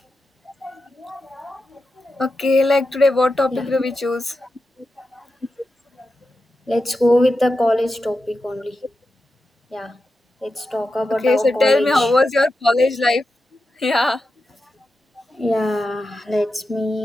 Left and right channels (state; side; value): normal; both; correlation 0.90